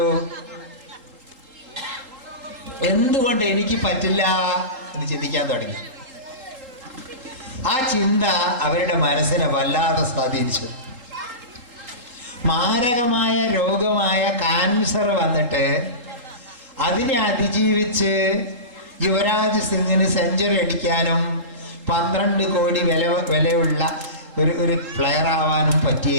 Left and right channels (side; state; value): left; late; 3.8 ms